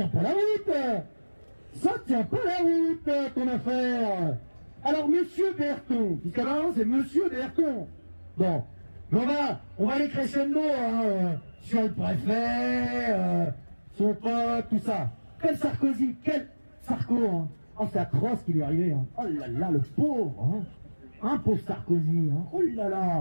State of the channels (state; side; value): inverted; both; correlation -1.00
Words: pas la route. Ça tient pas la route, ton affaire. Alors monsieur Berton, puisqu'à maintenant c'est monsieur Berton. Bon, on va aller crescendo sur le préfet, son pote, tout ça. Quel Sarkozy, quel Sarko, hein. Oh c'est atroce ce qui lui est arrivé, hein. Oh là là, le pauvre, hein. Pauvre Sarkozy, hein. Oh là